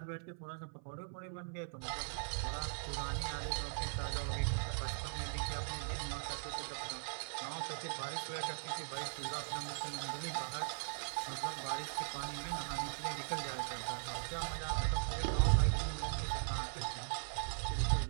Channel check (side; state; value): left; silent; 51 dB below the other